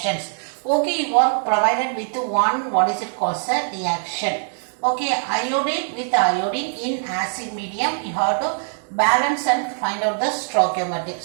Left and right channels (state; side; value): silent; left; digital silence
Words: Okay, you are provided with one, what is it called, sir? Reaction. Okay, iodine with iodine in acid medium, you have to balance and find out the stoichiometric.